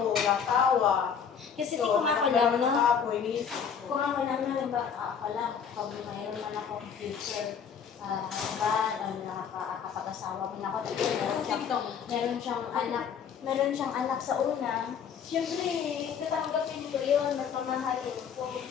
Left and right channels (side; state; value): right; quieter; 7.2 dB